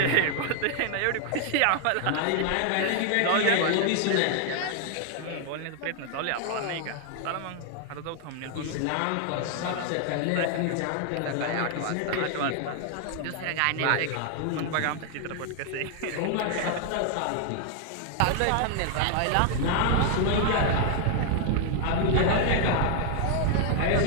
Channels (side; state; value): both; different; correlation 0.00